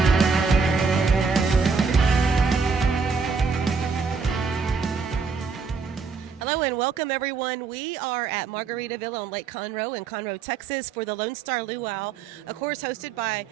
Welcome, everyone. We are at Margaritaville on Lake Conroe in Conroe, Texas for the Lone Star Luau, of course, hosted by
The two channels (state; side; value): quieter; left; 5.1 dB